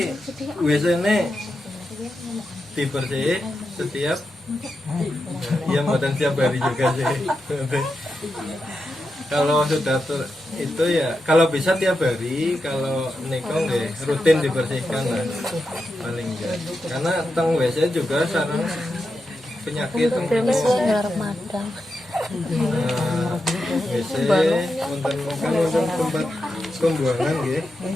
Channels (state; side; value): normal; both; correlation 0.88